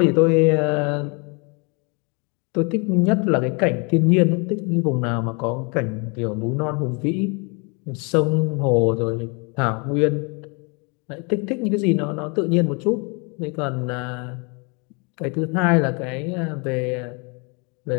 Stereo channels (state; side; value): quieter; right; 32.7 dB